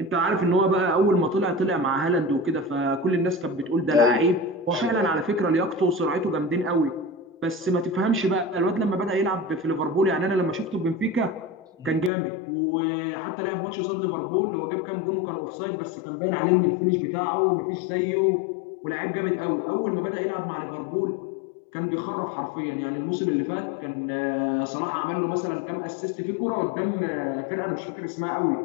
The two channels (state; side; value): drops out; right; at 12.1 s